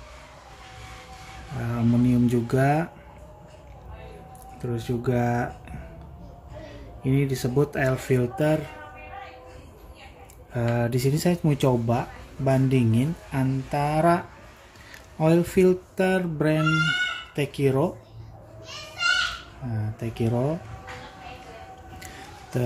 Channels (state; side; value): identical; both; correlation 1.00